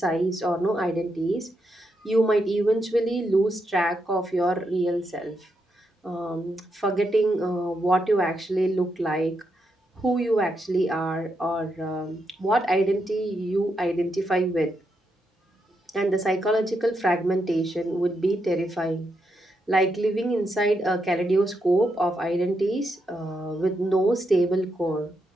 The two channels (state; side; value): normal; both; correlation 0.82